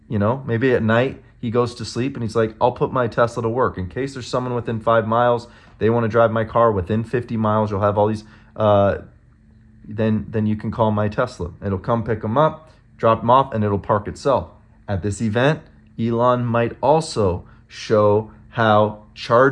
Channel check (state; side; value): identical; both; correlation 1.00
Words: You know, maybe at night he goes to sleep and he's like, I'll put my Tesla to work. In case there's someone within 5 miles, they want to drive my car within 50 miles, you'll have all these, then you can call my Tesla. It'll come pick them up, drop them off, and it'll park itself. At this event, Elon might also show how